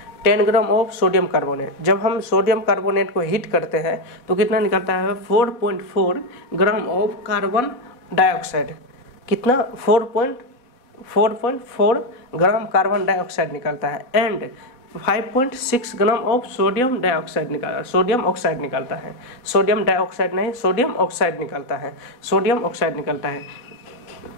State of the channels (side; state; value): right; late; 4.1 ms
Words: 10 ग्राम ऑफ सोडियम कार्बोनेट। जब हम सोडियम कार्बोनेट को हीट करते हैं तो कितना निकलता है 4.4 ग्राम ऑफ कार्बन डाइऑक्साइड। कितना 4.4 ग्राम कार्बन डाइऑक्साइड निकलता है and 5.6 gram of sodium dioxide निकलता है। सोडियम ऑक्साइड निकलता है, सोडियम डाइऑक्साइड नहीं, सोडियम ऑक्साइड निकलता है, सोडियम ऑक्साइड निकलता है।